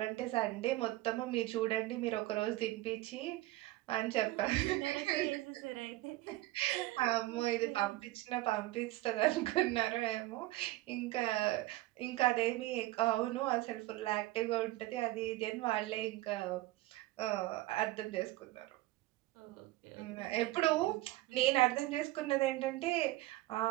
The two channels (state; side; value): quieter; left; 18.1 dB